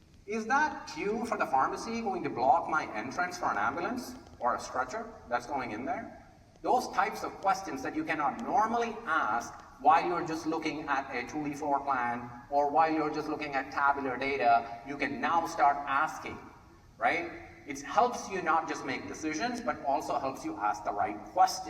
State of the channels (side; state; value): both; identical; correlation 1.00